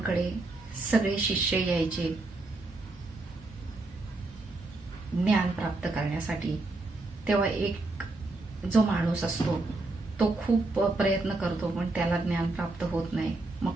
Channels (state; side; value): quieter; left; 3.1 dB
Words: सगळे शिष्य यायचे ज्ञान प्राप्त करण्यासाठी. तेव्हा एक जो माणूस असतो तो खूप प्रयत्न करतो पण त्याला ज्ञान प्राप्त होत नाही. मग